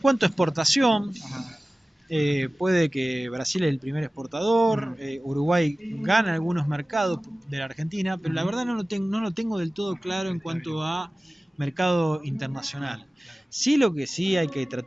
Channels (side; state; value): both; normal; correlation 0.97